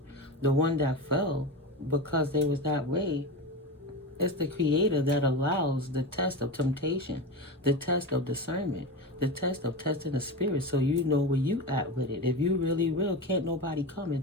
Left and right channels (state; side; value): normal; both; correlation 0.22